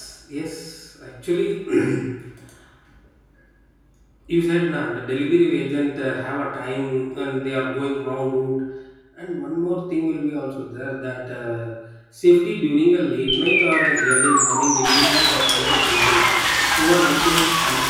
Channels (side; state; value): both; identical; correlation 1.00